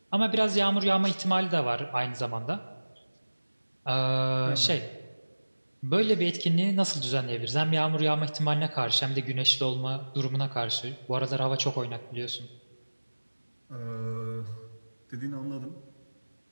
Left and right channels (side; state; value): both; inverted; correlation -1.00